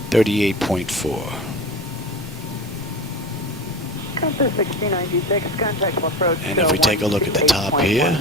38.4. Compass 6096, contact approach. And if we take a look at the top here,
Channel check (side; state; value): both; normal; correlation 0.30